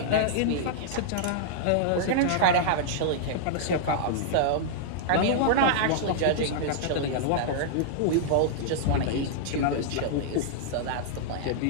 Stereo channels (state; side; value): different; both; correlation -0.01